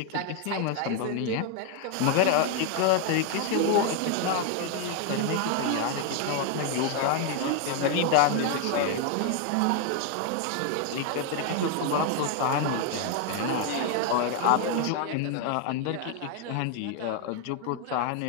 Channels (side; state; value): both; different; correlation 0.01